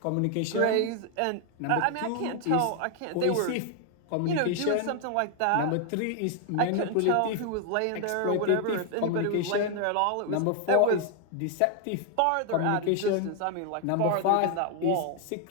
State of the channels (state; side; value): different; both; correlation 0.00